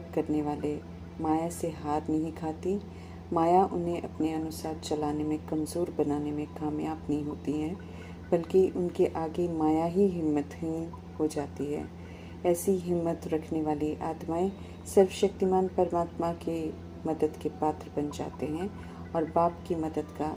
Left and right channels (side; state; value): both; identical; correlation 1.00